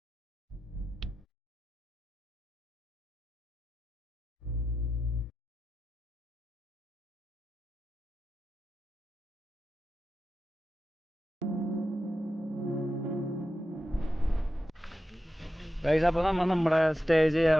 ഗൈസ്. അപ്പോൾ നമ്മുടെ സ്റ്റേ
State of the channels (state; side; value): normal; both; correlation 0.91